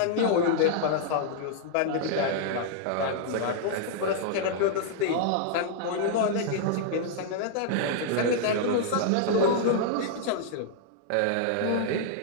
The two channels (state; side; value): different; both; correlation -0.01